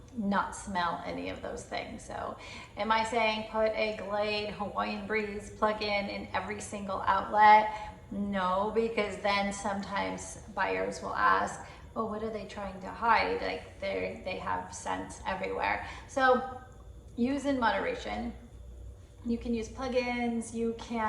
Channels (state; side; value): identical; both; correlation 1.00